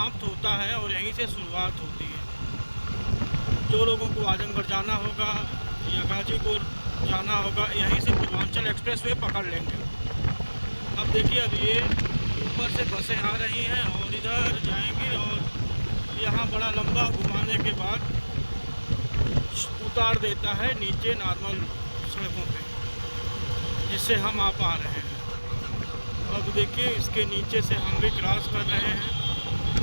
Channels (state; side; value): inverted; both; correlation -1.00